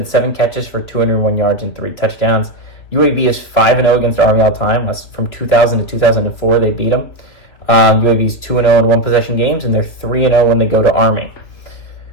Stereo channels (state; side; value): late; right; 3.2 ms